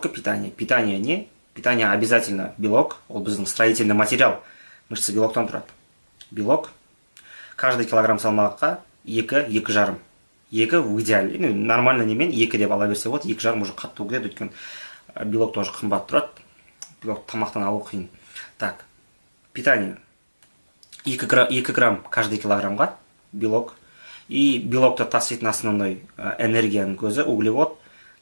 питание. Питание не? Питание обязательно белок, ол біздің строительный материал. Мышца белоктан тұрады. Белок. Каждый килограмм салмаққа 2-2,5. 2 в идеале. Нормально немен 2 деп ала берсе болады. 2,5 уже қатты өкіледі, өйткені белок тоже қымбат тұрады. Белок тамақтан алу қиын. Так, питание. 2 грамм каждый килограммға белок. И белокты таситын основной энергияның көзі, углевод.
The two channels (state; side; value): inverted; both; correlation -1.00